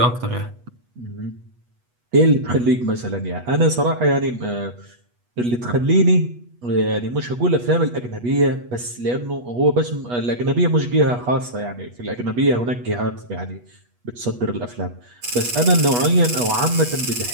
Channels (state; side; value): late; left; 8.3 ms